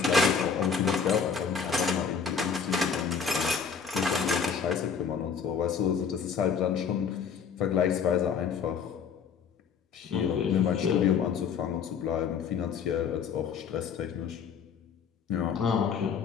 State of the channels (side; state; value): right; quieter; 6.6 dB